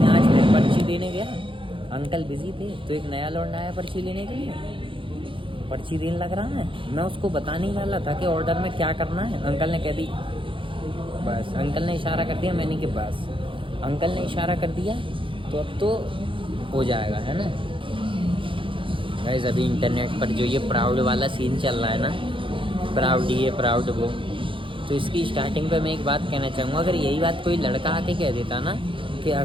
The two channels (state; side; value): late; left; 0.25 ms